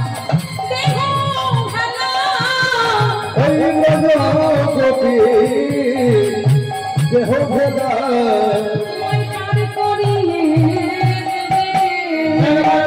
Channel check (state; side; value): identical; both; correlation 1.00